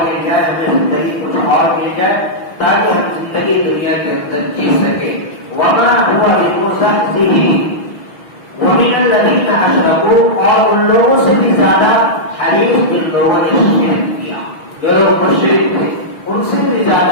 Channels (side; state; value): right; late; 6.1 ms